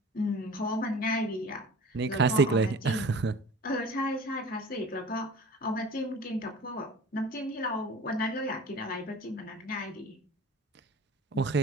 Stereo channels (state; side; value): normal; both; correlation 0.42